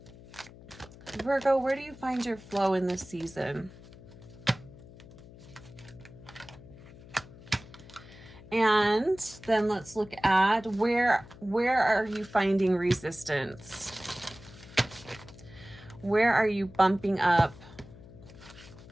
Virgo, where do you find your flow in this season? And then let's look at where are you finding resistance? Where are you bumping up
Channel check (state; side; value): noise; left; hum, 19 dB below the sound